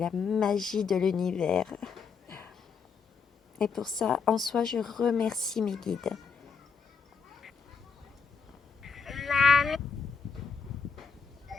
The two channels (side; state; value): right; quieter; 5.8 dB